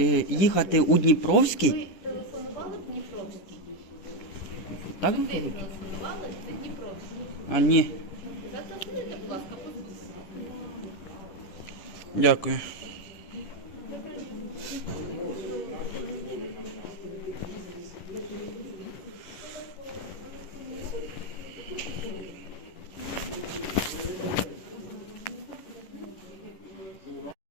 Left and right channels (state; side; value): late; right; 11 ms